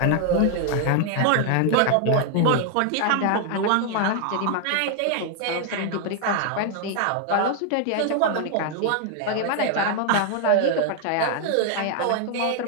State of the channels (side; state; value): both; different; correlation 0.00